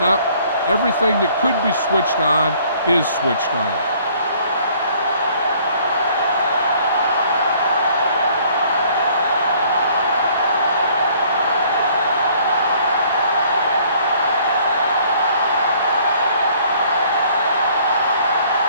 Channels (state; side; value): inverted; both; correlation -0.59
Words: up. Everything that could be switched on is switched on.